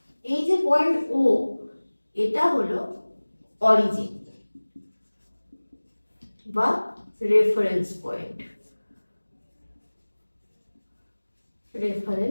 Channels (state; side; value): inverted; both; correlation -1.00